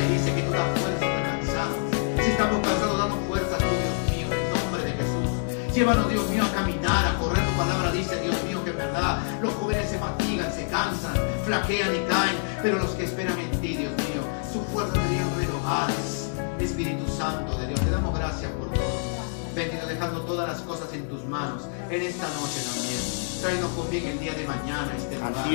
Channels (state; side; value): silent; right; digital silence